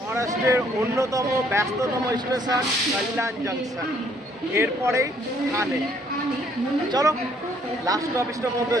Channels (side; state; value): both; normal; correlation 0.64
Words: অন্যতম ব্যস্ততম স্টেশন কল্যাণ জংশন, এরপরেই ঠানে। চলো লাস্ট অফিসটার মধ্যে